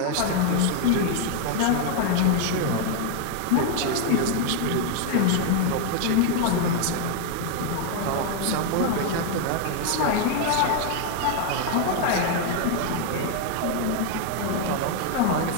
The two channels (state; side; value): different; both; correlation 0.00